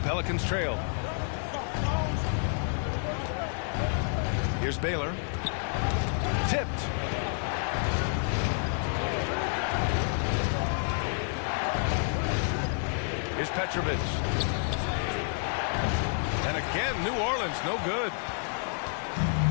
trail. Here's Baylor. Tipped. Here's Petrovic. And again, New Orleans, no good.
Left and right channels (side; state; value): right; silent; 58 dB below the other